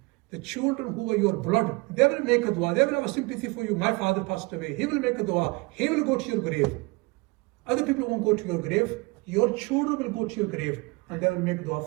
The children who are your blood, they will make a dua. They will have a sympathy for you. My father passed away. He will make a dua. He will go to your grave. Other people won't go to your grave. Your children will go to your grave and they will make a dua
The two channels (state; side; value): quieter; left; 26.0 dB